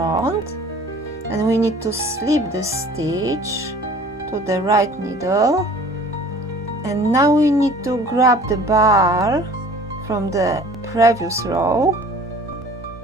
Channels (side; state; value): both; normal; correlation 0.49